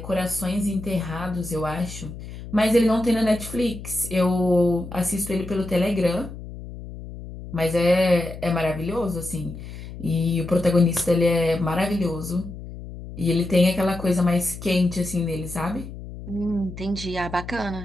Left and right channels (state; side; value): noise; left; hum, 12 dB below the sound